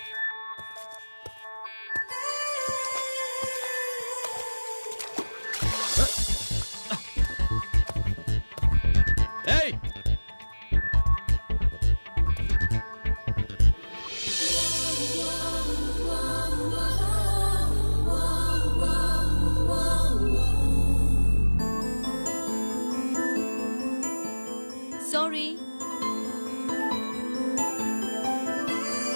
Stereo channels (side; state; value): both; inverted; correlation -1.00